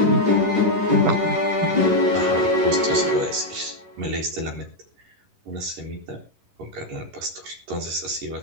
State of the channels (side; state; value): left; late; 11 ms